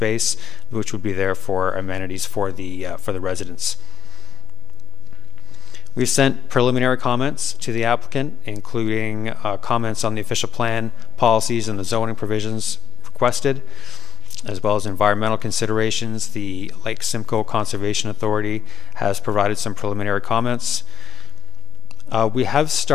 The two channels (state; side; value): quieter; right; 9.2 dB